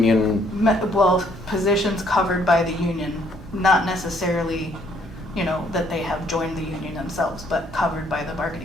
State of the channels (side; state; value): both; normal; correlation 0.65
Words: well, positions covered by the union, not necessarily, that they have joined the union themselves, but covered by the